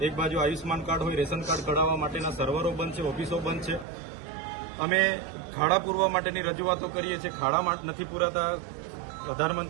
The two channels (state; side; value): drops out; left; at 3.9 s